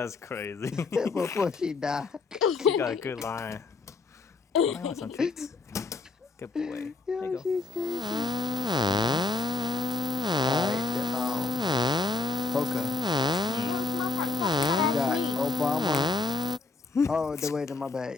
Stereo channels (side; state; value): right; quieter; 3.9 dB